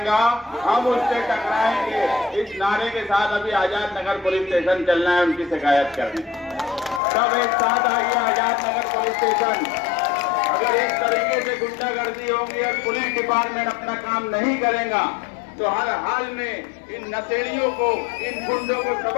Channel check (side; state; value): right; drops out; at 7.0 s